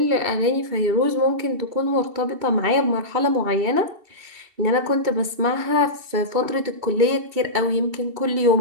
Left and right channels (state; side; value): late; left; 2.7 ms